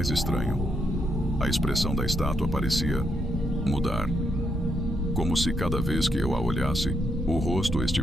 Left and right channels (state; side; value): normal; both; correlation 0.78